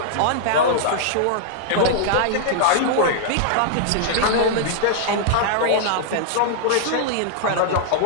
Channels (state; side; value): different; both; correlation -0.01